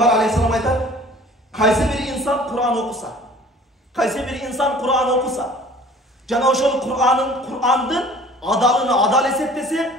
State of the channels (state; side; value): normal; both; correlation 0.48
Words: aleyhisselam aytar: kaysi bir insan Kur'an okusa, kaysi bir insan Kur'an okusa, jana ошол Kur'andын adalını adal eseptese,